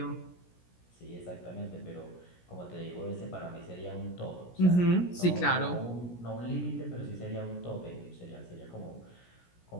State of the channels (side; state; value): right; late; 17 ms